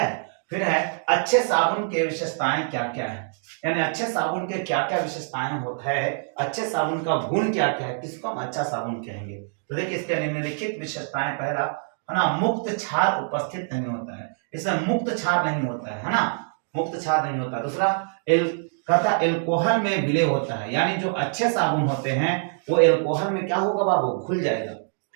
फिर है अच्छे साबुन के विशेषताएं क्या क्या है, यानी अच्छे साबुन के क्या क्या विशेषताएं होता है, अच्छे साबुन का गुण क्या क्या है, किसको हम अच्छा साबुन कहेंगे। तो देखिए इसके निम्नलिखित विशेषताएं, पहला है ना, मुक्त क्षार उपस्थित नहीं होता है, इसमें मुक्त क्षार नहीं होता है ना, मुक्त क्षार नहीं होता। दूसरा कहता एल्कोहल में विलय होता है, यानी जो अच्छे साबुन होते हैं वो एल्कोहल में क्या होगा बाबू, घुल जाएगा।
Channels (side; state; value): left; silent; digital silence